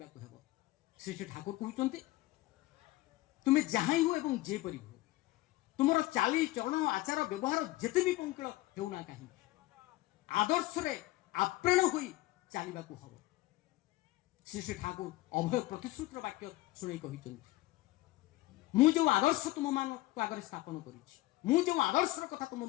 ହେବ। ଶ୍ରୀ ଶ୍ରୀ ଠାକୁର କହୁଛନ୍ତି ତୁମେ ଯାହା ହୁଅ ଏବଂ ଯେପରି ହୁଅ, ତୁମର ଚାଲି ଚରଣ ଆଚାର ବ୍ୟବହାର ଯେତେ ବି ପଙ୍କିଳ ହେଉନା କାହିଁକି, ଆଦର୍ଶରେ ଆପ୍ରାଣ ହୋଇ ଚାଲିବାକୁ ହେବ। ଶ୍ରୀ ଶ୍ରୀ ଠାକୁର ଅଭୟ ପ୍ରତିଶ୍ରୁତିର ବାକ୍ୟ ଶୁଣାଇ କହିଛନ୍ତି, ମୁଁ ଯେଉଁ ଆଦର୍ଶ ତୁମମାନଙ୍କ ଆଗରେ ସ୍ଥାପନ କରିଛି, ମୁଁ ଯେଉଁ ଆଦର୍ଶର କଥା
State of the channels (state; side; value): quieter; right; 18.3 dB